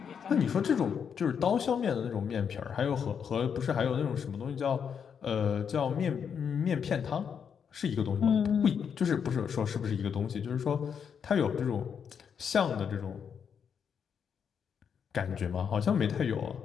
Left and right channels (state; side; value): quieter; right; 7.2 dB